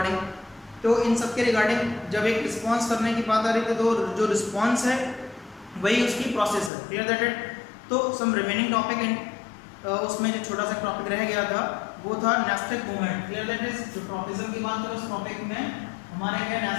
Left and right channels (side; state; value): right; drops out; at 6.7 s